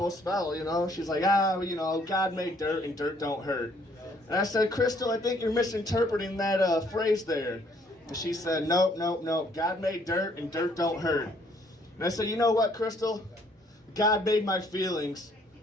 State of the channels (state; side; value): normal; both; correlation 0.64